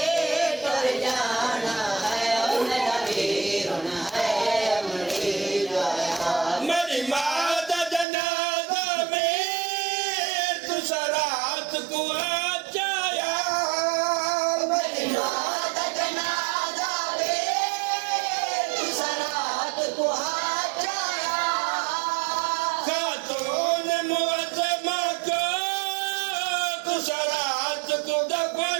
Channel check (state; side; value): drops out; left; at 8.1 s